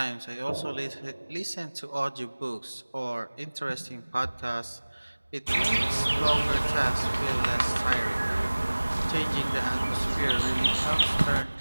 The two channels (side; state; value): both; inverted; correlation -1.00